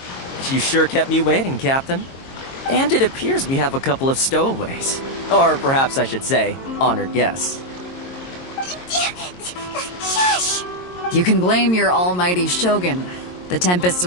You sure kept me waiting, Captain. And it appears we have a couple of stowaways. Or perhaps I should say, honored guests. Shush! You can blame your almighty Shogun. The tempests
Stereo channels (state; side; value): late; right; 22 ms